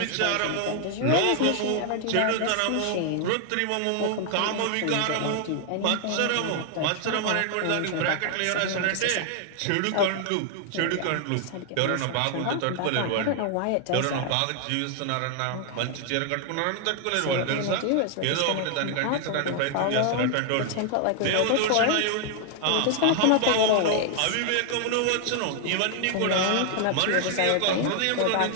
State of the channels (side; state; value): both; different; correlation 0.00